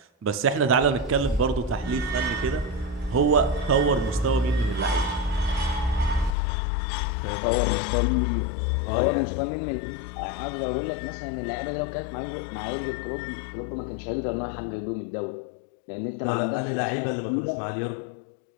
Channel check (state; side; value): drops out; right; at 6.4 s